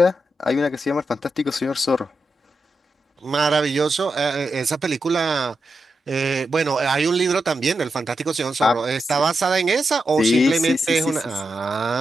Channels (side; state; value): both; normal; correlation 0.87